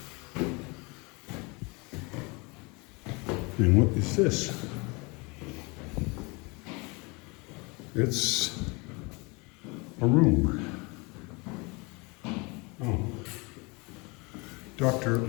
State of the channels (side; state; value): right; quieter; 28.2 dB